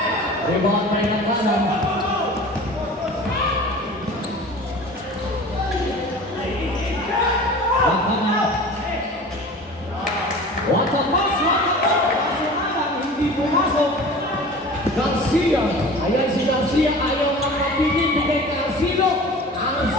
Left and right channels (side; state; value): both; normal; correlation 0.39